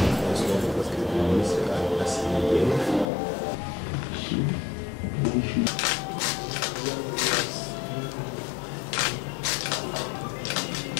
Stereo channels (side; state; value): right; drops out; at 3.1 s